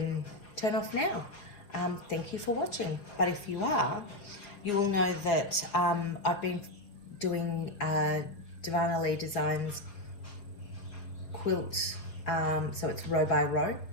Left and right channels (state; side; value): late; right; 5.0 ms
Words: turn off now. Thank you for watching. But if you are, you will know that I've been doing Divana Lee Designs quilt, so it's row by row,